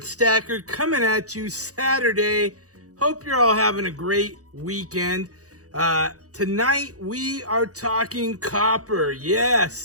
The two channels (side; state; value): left; late; 0.66 ms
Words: Stacker coming at you Saturday. Hope you're all having a great weekend. Tonight we are talking copper.